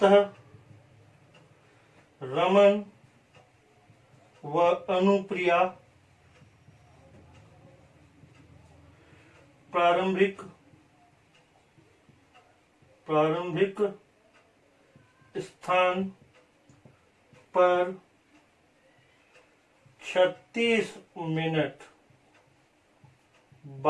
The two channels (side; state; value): both; identical; correlation 1.00